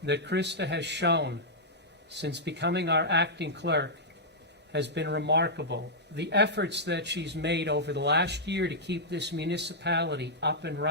that Krista has shown since becoming our acting clerk has been remarkable. The efforts that she's made over the last year to keep this municipality up and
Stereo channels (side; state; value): both; normal; correlation -0.09